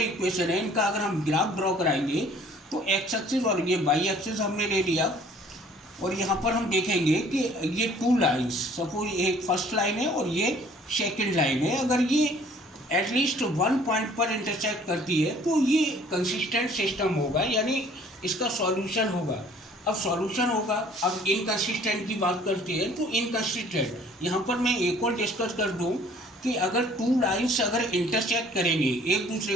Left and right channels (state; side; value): normal; both; correlation 0.55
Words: इक्वेशन है इनका अगर हम ग्राफ ड्रॉ कराएंगे तो एक्स एक्सिस और ये वाई एक्सिस हमने ले लिया, और यहाँ पर हम देखेंगे कि ये टू लाइन्स, सपोज एक फर्स्ट लाइन है और ये सेकेंड लाइन है, अगर ये एटलीस्ट वन पॉइंट पर इंटरसेक्ट करती है तो ये कंसिस्टेंट सिस्टम होगा, यानी इसका सॉल्यूशन होगा। अब सॉल्यूशन होगा। अब इनकंसिस्टेंट की बात करते हैं तो इनकंसिस्टेंट, यहाँ पर मैं एक और डिस्कस कर दूँ कि अगर टू लाइन्स अगर इंटरसेक्ट करेंगे, एक दूसरे